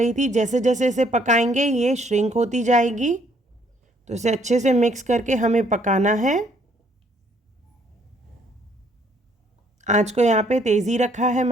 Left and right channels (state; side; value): normal; both; correlation 0.66